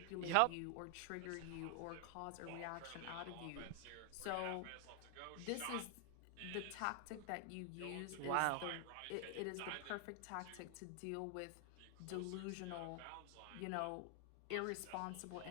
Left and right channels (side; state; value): both; different; correlation 0.00